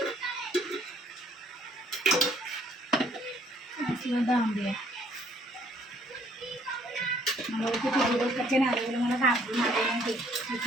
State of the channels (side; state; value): both; normal; correlation 0.63